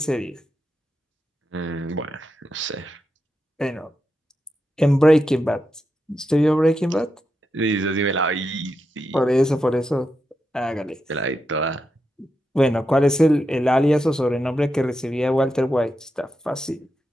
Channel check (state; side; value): normal; both; correlation 0.86